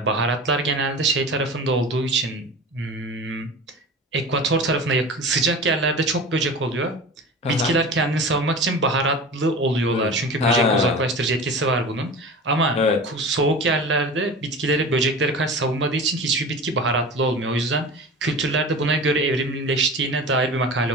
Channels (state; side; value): normal; both; correlation 0.34